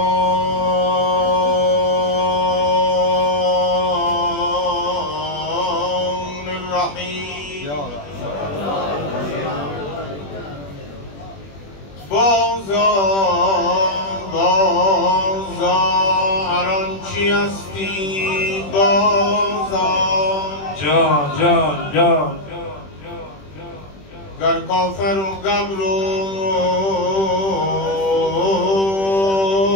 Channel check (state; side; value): late; right; 21 ms